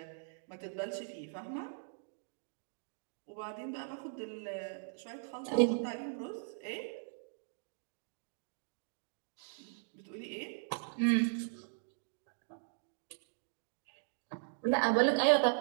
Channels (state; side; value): silent; left; digital silence